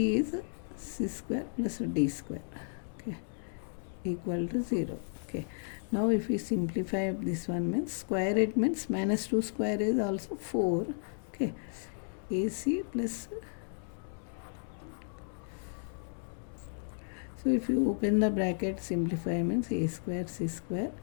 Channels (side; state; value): right; silent; 55 dB below the other